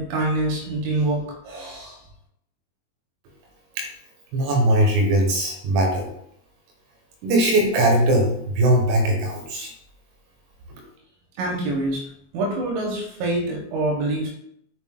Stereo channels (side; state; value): left; late; 22 ms